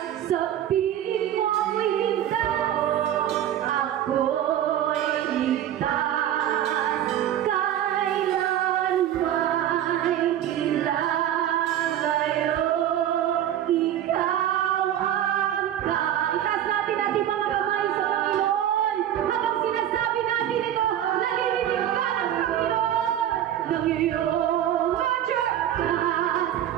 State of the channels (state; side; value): quieter; left; 11.2 dB